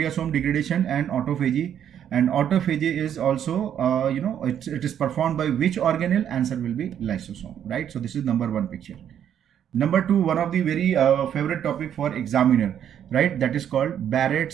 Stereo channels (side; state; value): left; quieter; 9.5 dB